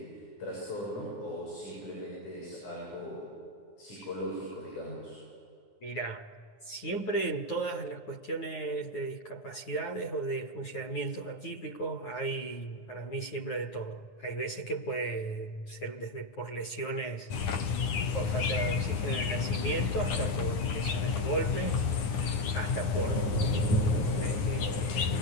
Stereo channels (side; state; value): right; late; 9.9 ms